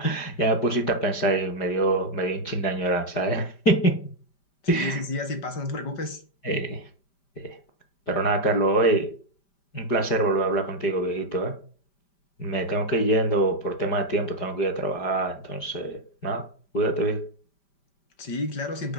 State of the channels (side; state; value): right; late; 5.1 ms